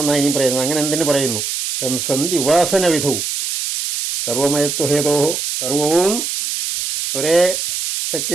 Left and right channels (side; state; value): right; noise; hiss, 3 dB below the sound